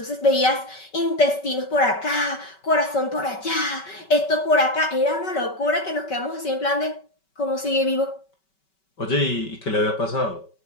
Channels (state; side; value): late; right; 5.2 ms